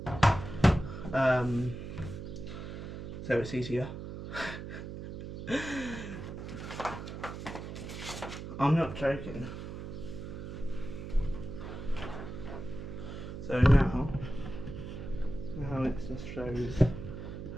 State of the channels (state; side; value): noise; right; hum, 8 dB below the sound